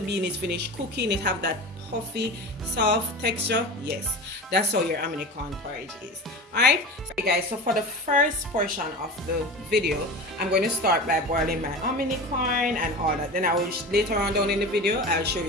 is finished cooking, it have that puffy soft texture. Yes, that's how your hominy corn porridge is. Alright, so guys, so for the first portion of the video, I'm going to start by boiling my hominy corn and all that. Then I will later on down in the video, I'll show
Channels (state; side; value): normal; both; correlation 0.30